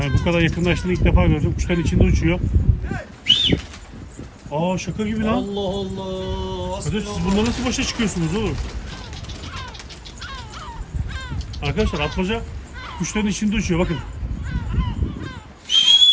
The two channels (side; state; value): both; identical; correlation 1.00